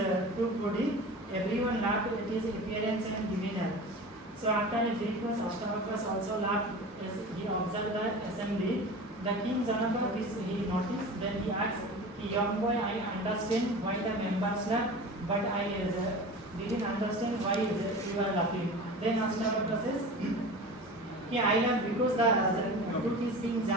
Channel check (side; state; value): both; normal; correlation 0.34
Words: true body, everyone laughed at his appearance and demeanor. So after a brief course, Ashtavakra also laughed as he observed the assembly. The king Janaka, this he noticed, then he asked, young boy, I understand why the members laugh, but I didn't understand why you are laughing. Then Ashtavakra says, I laugh because the truth is being